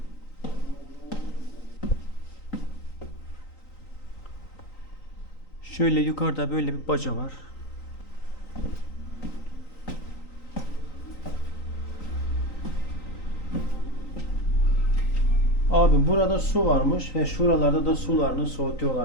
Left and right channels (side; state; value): right; late; 3.9 ms